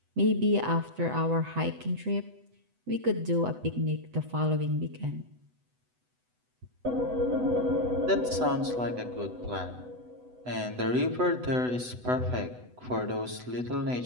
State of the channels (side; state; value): left; late; 8.0 ms